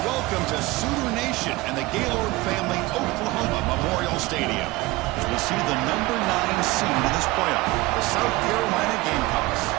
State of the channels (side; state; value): left; quieter; 20.5 dB